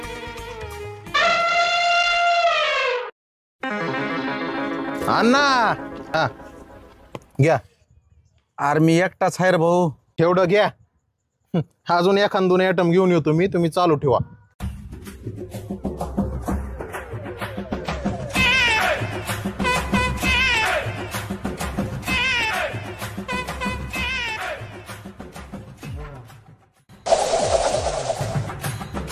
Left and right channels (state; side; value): identical; both; correlation 1.00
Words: अण्णा हा घ्या. अरे मी एकटाच आहे रे भाऊ. तेवढं घ्या. अजून एखाद 2 आयटम घेऊन येतो मी, तुम्ही चालू ठेवा.